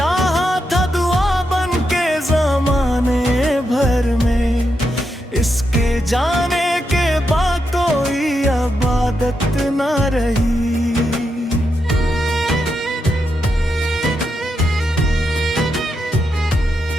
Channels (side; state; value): both; normal; correlation 0.84